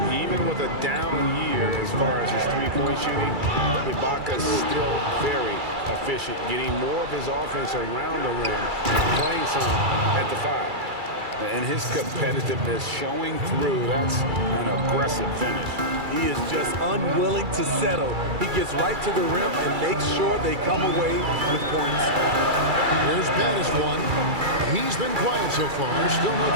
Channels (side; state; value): left; late; 2.3 ms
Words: Even with a down year as far as his three-point shooting, Ibaka's still very, efficient, getting more of his offense around the rim, playing some at the 5. And his competitiveness showing through. That's an aggressive finish. He is just unwilling to settle. He gets right to the rim and makes sure they come away with points. Here's Baddest one. He's been quiet so far. Still no